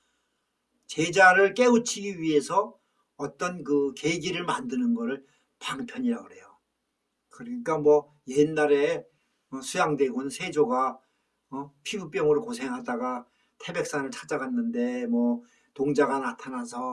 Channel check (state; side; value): identical; both; correlation 1.00